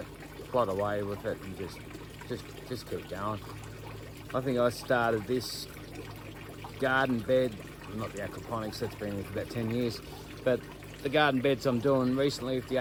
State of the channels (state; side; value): identical; both; correlation 1.00